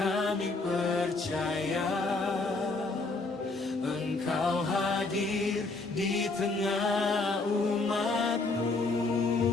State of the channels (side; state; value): right; quieter; 3.5 dB